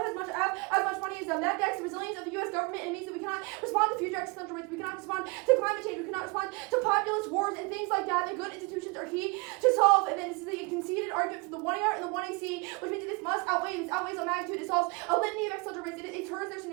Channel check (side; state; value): left; quieter; 28.7 dB